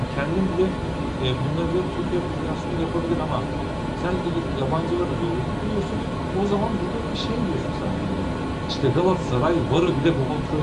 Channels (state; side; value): identical; both; correlation 1.00